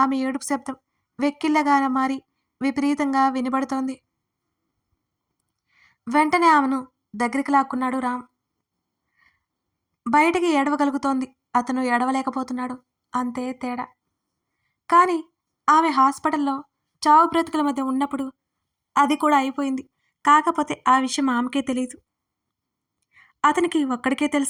ఏడుపు శబ్దం వెక్కిళ్ళగా మారి విపరీతంగా వినబడుతోంది. వెంటనే ఆమెను దగ్గరికి లాక్కున్నాడు రామ్. బయటికి ఏడవగలుగుతోంది, అతను ఏడవలేకపోతున్నాడు. అంతే తేడా. కానీ ఆమె హాస్పిటల్లో చావు బ్రతుకుల మధ్య ఉన్నప్పుడు అది కూడా అయిపోయింది. కాకపోతే ఆ విషయం ఆమెకే తెలియదు. అతనికి ఒక్కడికే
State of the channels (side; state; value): both; identical; correlation 1.00